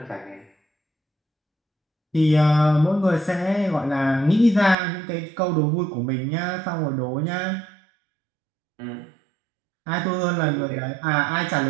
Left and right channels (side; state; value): left; drops out; at 4.8 s